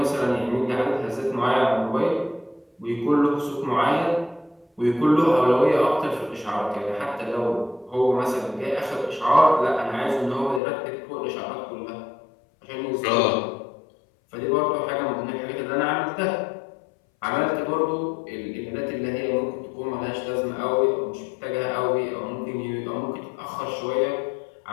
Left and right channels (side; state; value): right; drops out; at 10.6 s